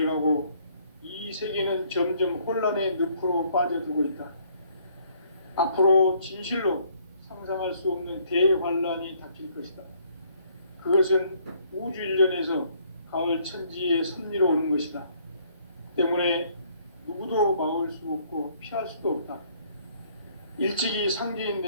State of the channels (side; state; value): both; inverted; correlation -0.64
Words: 이 세계는 점점 혼란의 늪으로 빠져들고 있다. 앞으로 진실로 상상할 수 없는 대환란이 닥칠 것이다. 그것은 우주 일련에서 가을 천지의 섭리로 오는 것이다. 때문에 누구도 막을 수 없고 피할 수도 없다. 일찍이 상제인